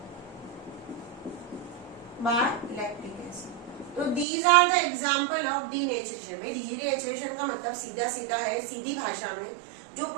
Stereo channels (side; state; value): left; drops out; at 4.2 s